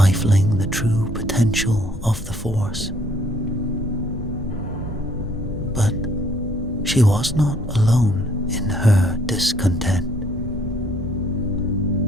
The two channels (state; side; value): normal; both; correlation 0.63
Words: the true potential of the Force. But she was not alone in her discontent.